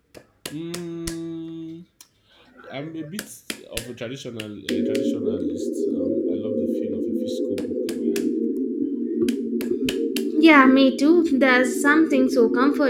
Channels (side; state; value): both; identical; correlation 1.00